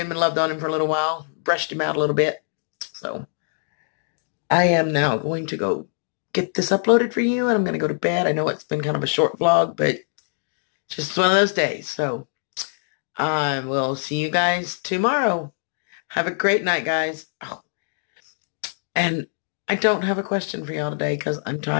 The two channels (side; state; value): right; silent; digital silence